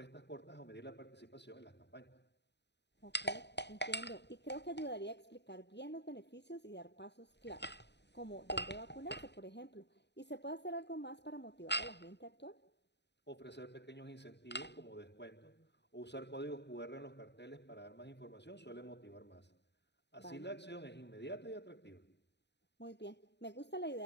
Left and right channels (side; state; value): right; late; 0.50 ms